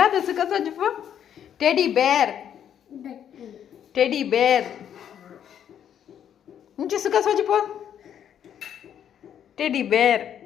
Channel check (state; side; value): quieter; right; 9.3 dB